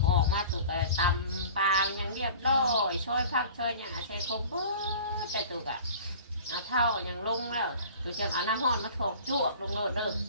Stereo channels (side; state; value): both; inverted; correlation -0.43